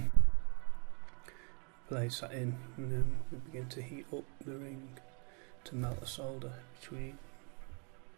place that in, and then we begin to heat up the ring to melt the solder between.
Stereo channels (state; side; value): quieter; left; 36.8 dB